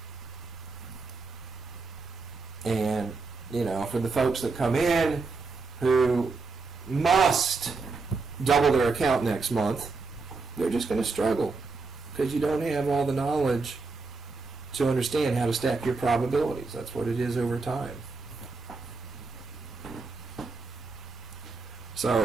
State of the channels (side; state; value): left; quieter; 4.1 dB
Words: And, for the folks that come in who must double their account next month, they're just going to struggle because you don't have all the knowledge to understand how to stack your probabilities. That's what it is over time.